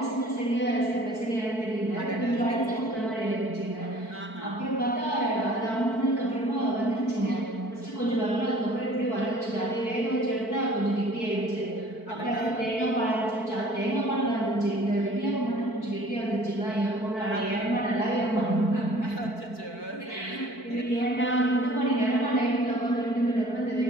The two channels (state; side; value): late; right; 4.5 ms